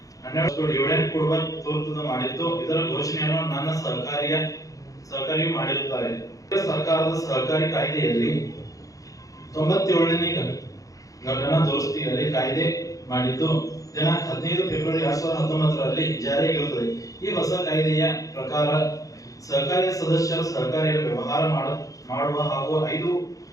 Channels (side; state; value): right; late; 0.17 ms